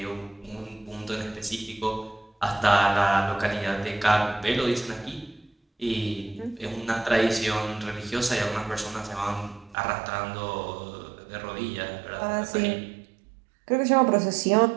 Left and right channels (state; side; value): drops out; left; at 9.8 s